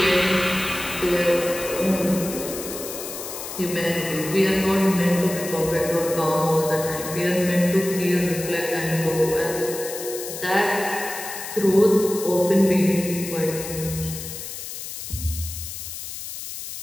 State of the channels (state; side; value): noise; left; hiss, 9 dB below the sound